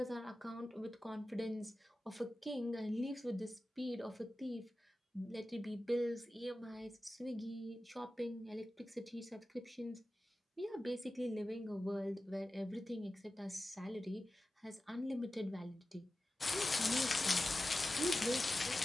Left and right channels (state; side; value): normal; both; correlation 0.94